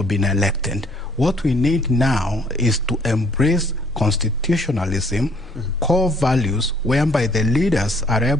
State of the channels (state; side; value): normal; both; correlation 0.61